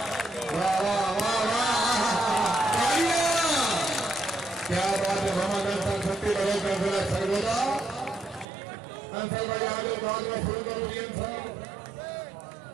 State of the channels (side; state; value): left; drops out; at 8.5 s